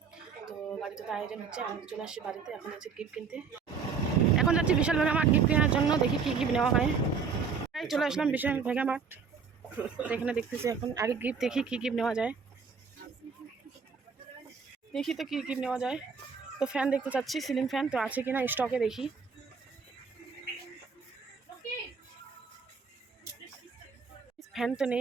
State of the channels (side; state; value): left; quieter; 5.7 dB